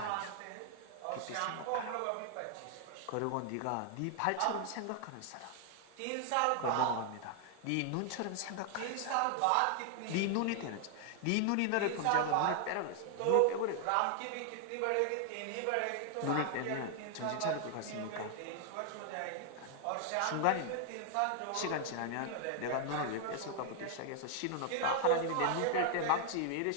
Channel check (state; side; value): different; both; correlation 0.00